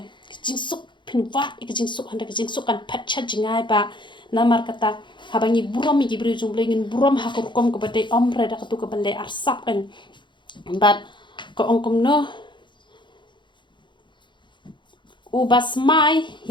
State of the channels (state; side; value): late; right; 0.23 ms